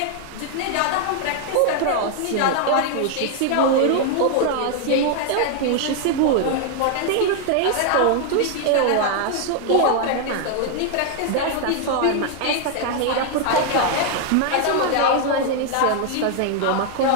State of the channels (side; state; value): both; different; correlation 0.00